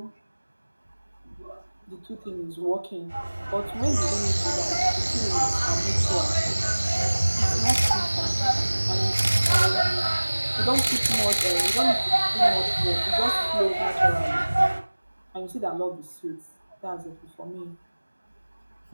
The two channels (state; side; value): inverted; both; correlation -1.00